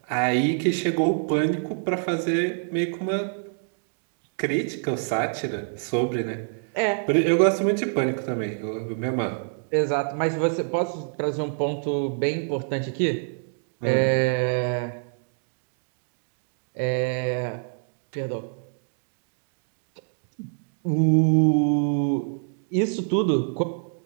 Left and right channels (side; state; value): left; silent; digital silence